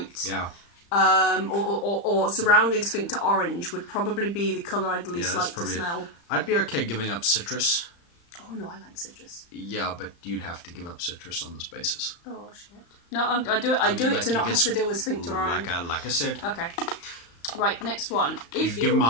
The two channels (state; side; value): late; right; 35 ms